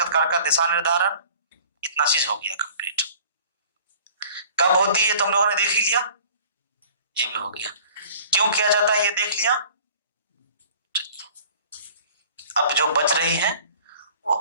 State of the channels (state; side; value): inverted; both; correlation -0.48